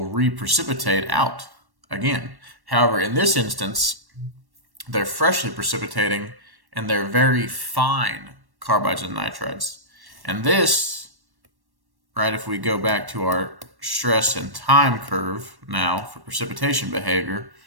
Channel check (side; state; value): left; late; 1.1 ms